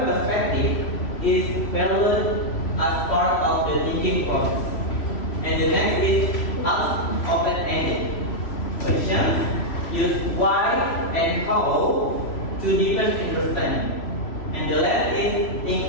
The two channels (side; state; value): right; late; 3.0 ms